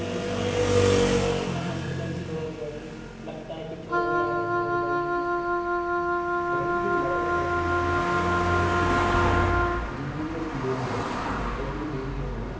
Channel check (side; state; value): both; identical; correlation 1.00